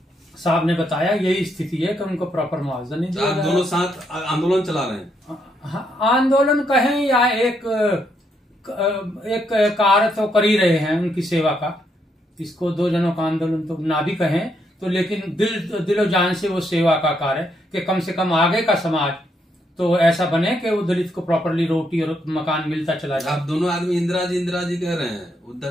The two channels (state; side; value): normal; both; correlation 0.76